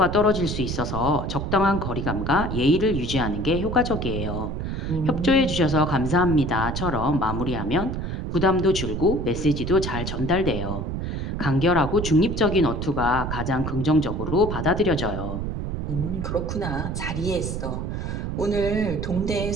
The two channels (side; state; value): right; noise; rumble, 3 dB below the sound